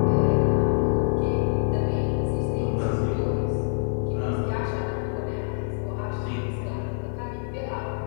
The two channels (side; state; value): right; silent; 61 dB below the other